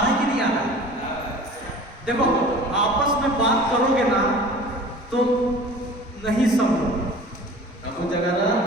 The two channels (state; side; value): normal; both; correlation 0.42